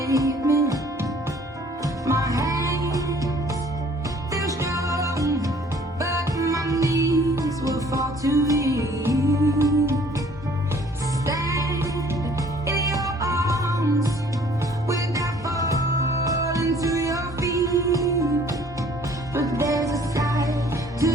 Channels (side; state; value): both; normal; correlation 0.56